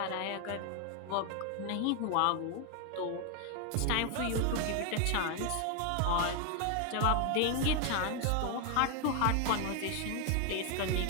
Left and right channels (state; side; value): different; both; correlation 0.01